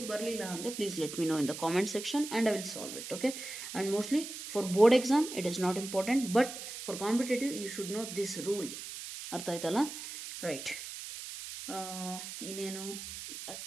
ಬರಲಿಲ್ಲ ಅಂದರೆ please let me know in the comment section and I will solve it. Okay, and mostly for board exam it is not important, but for competitive you should know this rule. ಅರ್ಥ ಆಯ್ತಲ್ಲ? Right, ಇನ್ನೇನು,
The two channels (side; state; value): right; noise; hiss, 9 dB below the sound